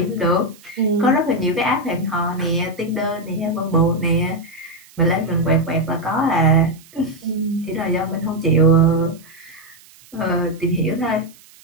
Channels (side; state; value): right; noise; hiss, 25 dB below the sound